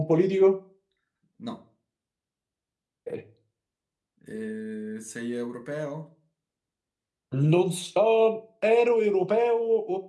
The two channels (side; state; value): both; identical; correlation 1.00